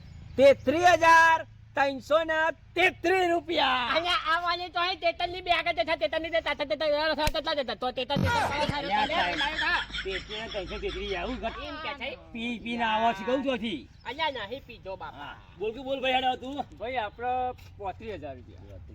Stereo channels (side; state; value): both; identical; correlation 1.00